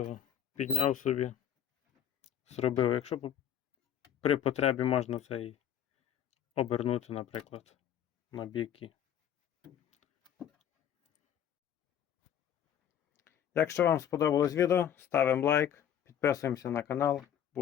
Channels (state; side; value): quieter; right; 9.7 dB